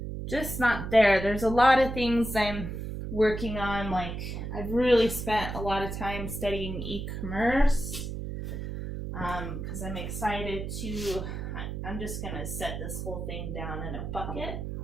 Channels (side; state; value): right; noise; hum, 5 dB below the sound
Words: just not there. There's a lot of things I'm working on. Like, I've really spent a lot of time studying e-commerce because I'm excited to, I'm just going to set this whole thing down in a bucket.